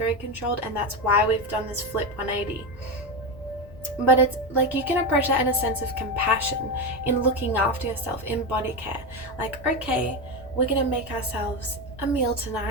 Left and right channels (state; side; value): noise; left; rumble, 19 dB below the sound